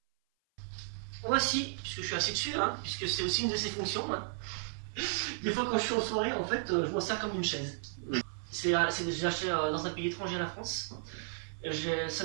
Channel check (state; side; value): silent; left; 55 dB below the other